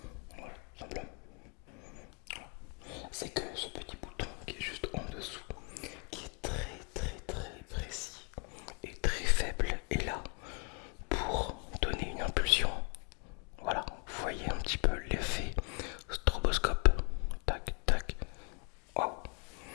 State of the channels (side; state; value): right; quieter; 37.8 dB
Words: Voilà, simplement. Voilà. C'est que ce petit bouton qui est juste en dessous, qui est très très très précis et très faible, est là pour donner une impulsion. Voilà, vous voyez un petit peu l'effet stroboscope. Tac, tac. Waouh!